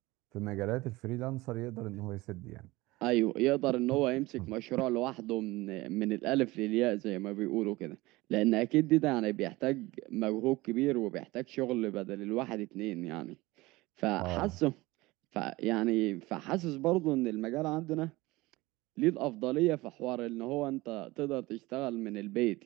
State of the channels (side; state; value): left; quieter; 20.5 dB